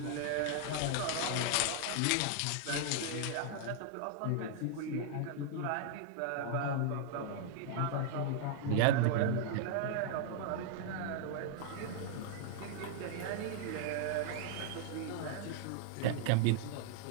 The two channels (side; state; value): both; different; correlation -0.01